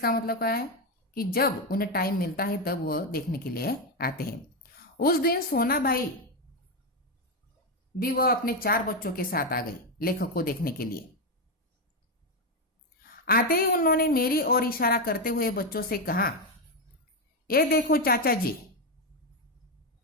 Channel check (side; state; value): both; normal; correlation 0.08